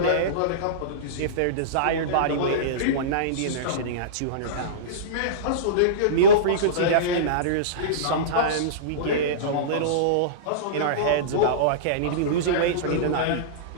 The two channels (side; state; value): both; different; correlation -0.05